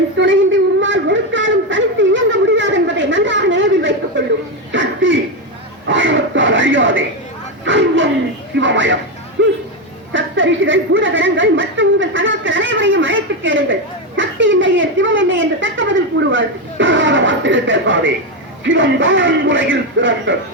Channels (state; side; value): normal; both; correlation 0.09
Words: துணையின்றி உம்மால் ஒரு காலம் தனித்து இயங்க முடியாது என்பதை நன்றாக நினைவில் வைத்துக் கொள்ளும். சக்தி ஆணவத்தால் அழியாதே. சர்வம் சிவமயம். சப்த ரிஷிகள், பூதகணங்கள் மற்றும் உங்கள் சகாக்கள் அனைவரையும் அழைத்து கேளுங்கள். சக்தி இல்லையே சிவம் இல்லை என்று தக்க பதில் கூறுவார்கள். வார்த்தைகள் பேசாதே. சிவம் தான் உலகில் சிறந்தது.